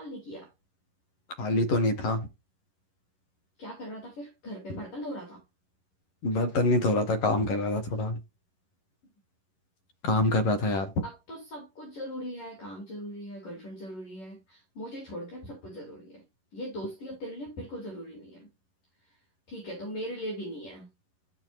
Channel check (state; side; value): late; right; 11 ms